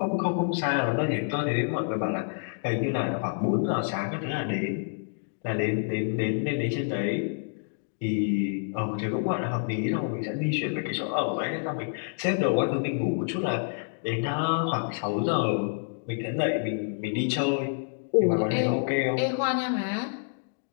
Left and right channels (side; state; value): right; silent; digital silence